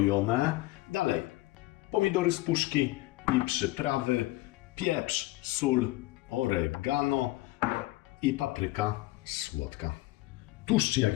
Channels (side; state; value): right; quieter; 19.1 dB